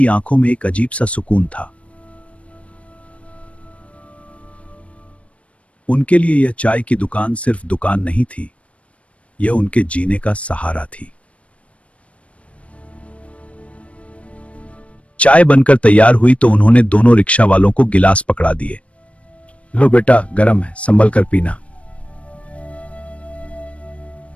आंखों में एक अजीब सा सुकून था। उनके लिए यह चाय की दुकान सिर्फ दुकान नहीं थी, यह उनके जीने का सहारा थी। चाय बनकर तैयार हुई तो उन्होंने दोनों रिक्शा वालों को गिलास पकड़ा दिए। लो बेटा, गरम है, संभल कर पीना।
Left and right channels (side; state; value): right; late; 0.063 ms